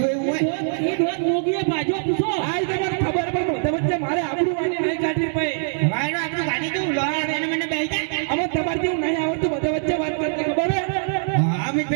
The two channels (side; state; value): left; silent; digital silence